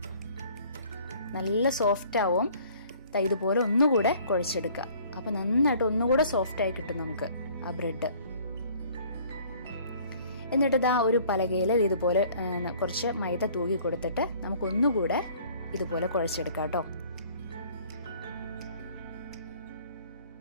നല്ല സോഫ്റ്റ് ആവും. ഇതുപോലെ ഒന്നുകൂടെ കുഴച്ചെടുക്കുക. അപ്പൊ നന്നായിട്ട് ഒന്നുകൂടെ സോഫ്റ്റ് ആയി കിട്ടും നമുക്ക് ആ ബ്രെഡ്. എന്നിട്ട് ഇതാ ഒരു പലകയിൽ ഇതുപോലെ കുറച്ച് മൈദ തൂകി കൊടുത്തിട്ട് നമുക്ക് ഒന്നുകൂടെ ഇതുപോലെ കുഴച്ചെടുക്കാം കേട്ടോ.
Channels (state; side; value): inverted; both; correlation -0.54